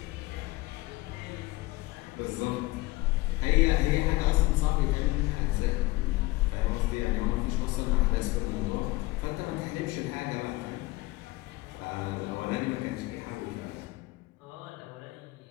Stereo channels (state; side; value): quieter; right; 20.7 dB